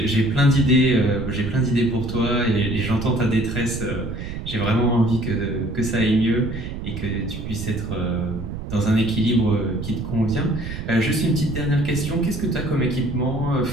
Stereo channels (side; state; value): right; noise; rumble, 7 dB below the sound